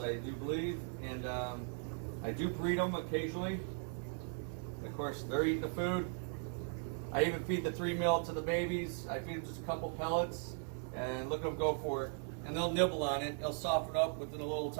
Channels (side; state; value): left; silent; 52 dB below the other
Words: do believe, and I do breed them occasionally. Of course, they're eating the food. I even feed the 3 mil to the babies. I feed them just a couple pellets, and look at them go for it. And they'll nibble on it. They'll soften up within a little